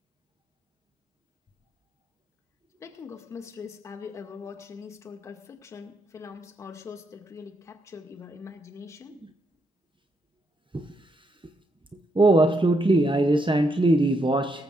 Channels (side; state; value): both; normal; correlation 0.78